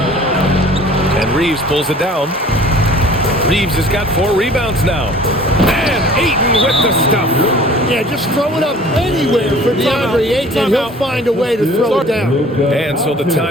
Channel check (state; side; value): normal; both; correlation 0.49